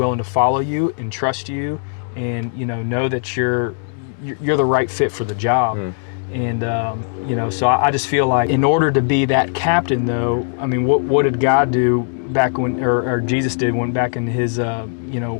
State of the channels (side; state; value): right; silent; digital silence